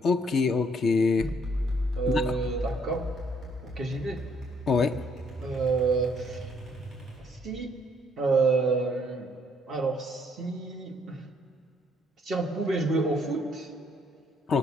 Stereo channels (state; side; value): normal; both; correlation 0.66